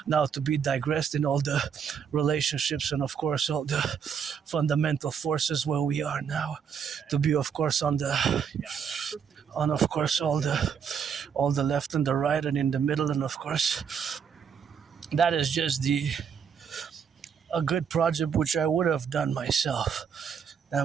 now to be digressed in all the relationships and, of course, all the fundamental forces where we are now to be, of course, on of course all the left and the right and in the middle, and of course. That is just a good project which I would have done myself. I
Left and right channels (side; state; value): left; quieter; 7.2 dB